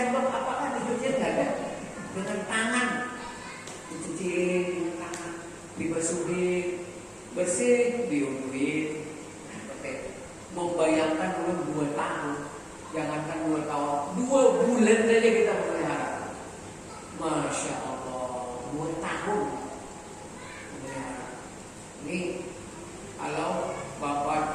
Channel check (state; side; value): identical; both; correlation 1.00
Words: apakah dicuciin? Nggak ada. Dengan tangan, dicuciin dengan tangan, dibasuhin, bersih, diuduin. Membayangkan dulu 2 tahun, jangankan 2 tahun, 2 bulan saja kita melihara. Masya Allah, 2 tahun melihara. Ini kalau